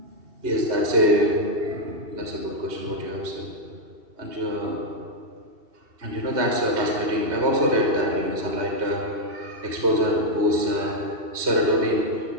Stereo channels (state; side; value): late; left; 2.7 ms